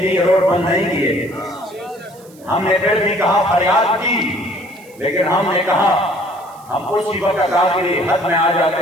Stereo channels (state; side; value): noise; right; hiss, 26 dB below the sound